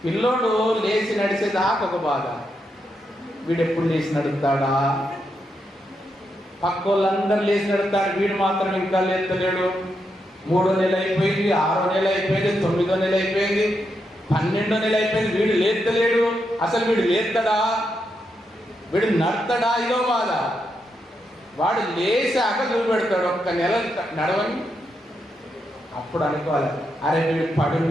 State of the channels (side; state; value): both; normal; correlation 0.83